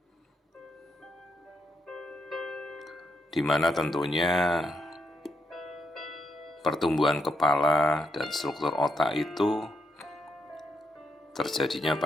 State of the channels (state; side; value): normal; both; correlation 0.80